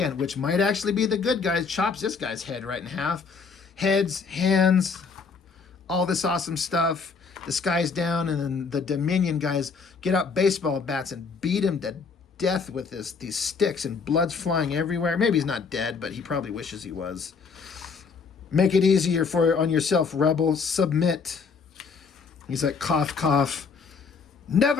which might actually be the good guys, chops this guy's head right in half. Heads, hands, all this awesome stuff. The sky's down, and then the Dominion guys get out baseball bats and beat him to death with these sticks, and blood's flying everywhere. Maybe he's not dead, but he probably wishes he was. Make it easier on yourself, rebel. Submit. He's like, cough, cough.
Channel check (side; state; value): right; quieter; 5.2 dB